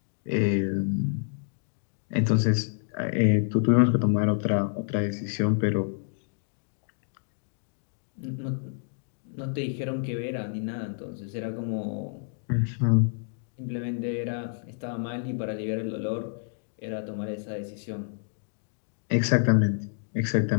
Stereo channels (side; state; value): right; silent; digital silence